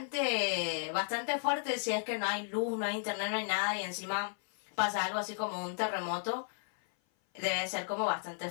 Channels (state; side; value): silent; right; 55 dB below the other